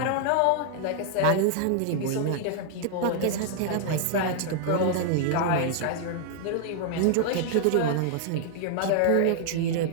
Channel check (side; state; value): both; different; correlation 0.00